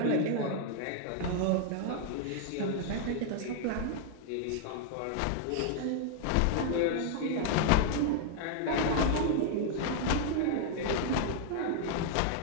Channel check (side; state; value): both; different; correlation -0.01